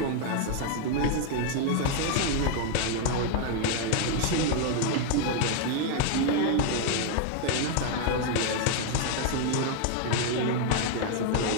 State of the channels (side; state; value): both; different; correlation 0.00